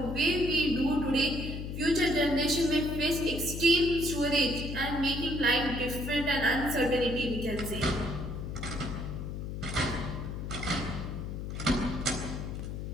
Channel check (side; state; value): left; noise; hum, 6 dB below the sound